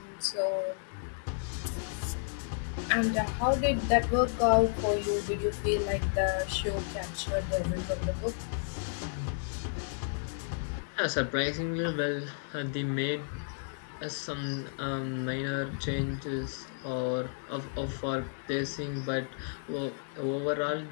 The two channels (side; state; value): right; silent; digital silence